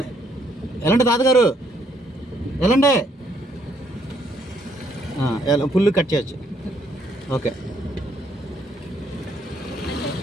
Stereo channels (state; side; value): normal; both; correlation 0.69